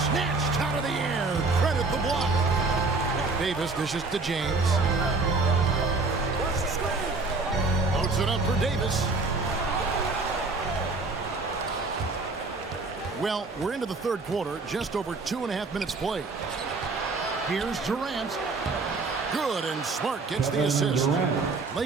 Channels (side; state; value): left; quieter; 3.7 dB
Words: snatched out of the air. Credit the block. Davis dishes to James. Loads it up for Davis. Well, we're into the third quarter, just over 2.5 minutes played. Here's Durant. Good, and Smart gets the assist.